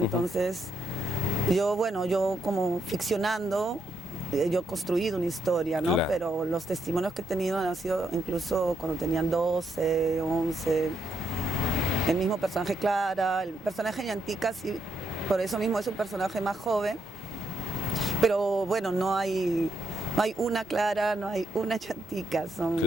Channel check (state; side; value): normal; both; correlation 0.78